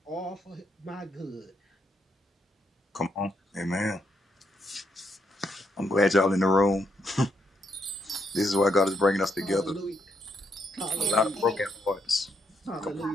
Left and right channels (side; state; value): both; normal; correlation 0.77